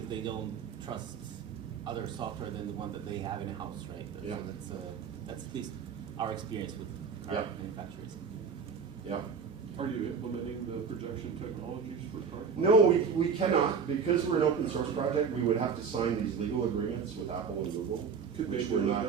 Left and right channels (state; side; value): quieter; left; 6.1 dB